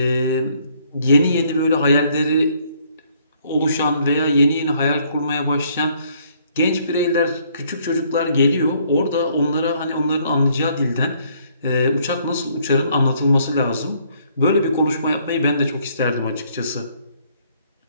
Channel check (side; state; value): both; inverted; correlation -0.65